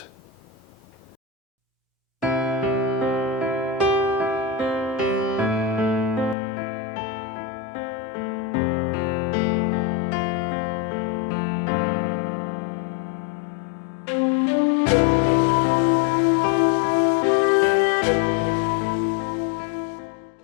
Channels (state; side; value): drops out; right; at 6.4 s